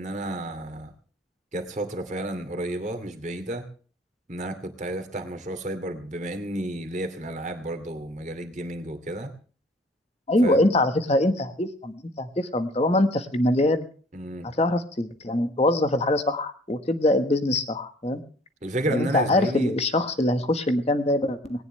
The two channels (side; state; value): both; normal; correlation 0.53